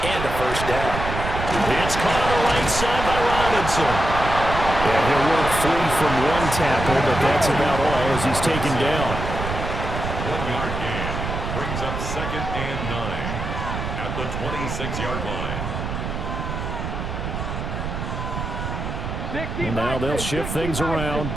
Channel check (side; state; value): right; noise; rumble, 5 dB below the sound